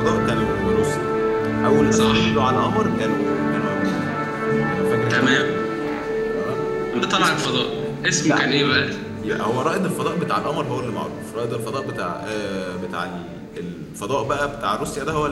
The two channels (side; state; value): both; identical; correlation 1.00